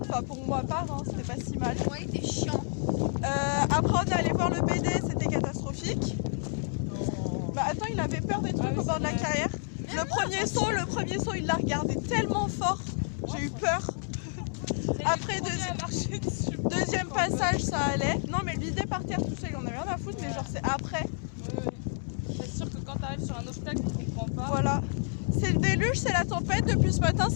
Enfin, pour moi, part, hein, c'était pas si mal. Ouais, il était chiant. Après, on est allé voir le BD, c'était catastrophique. Bah attends, il avait peur des trucs au bord de la carrière. Le premier saut, il l'a regardé tellement fort, j'ai eu peur. Après, deuxième passage, ça allait. Non, mais le vider par terre tout seul, il en avait rien à foutre, mais genre c'est après. C'est sûr que quand tu arrives sur un obstacle, tu comprends pas. Voilà. C'est le déluge, c'est la tempête, depuis ce matin,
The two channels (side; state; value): right; silent; 58 dB below the other